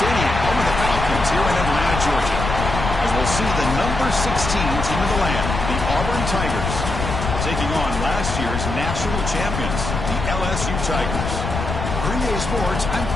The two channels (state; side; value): noise; left; rumble, 4 dB below the sound